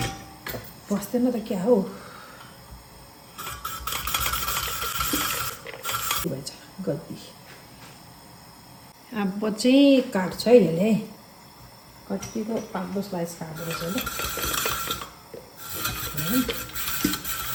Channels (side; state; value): both; identical; correlation 1.00